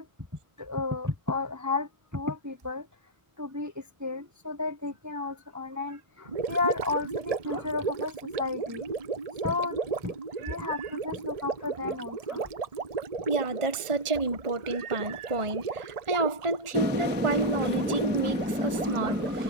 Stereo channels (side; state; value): left; late; 1.4 ms